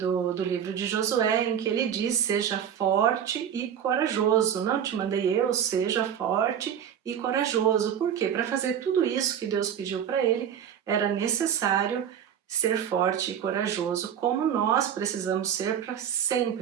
livro de Josué, em que ele diz: seja forte e corajoso. Não te mandei eu, seja forte e corajoso. Por quê? Para fazer tudo isso que Deus pediu para ele, era necessário ser forte e corajoso, como nós precisamos ser para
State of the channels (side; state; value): left; quieter; 8.9 dB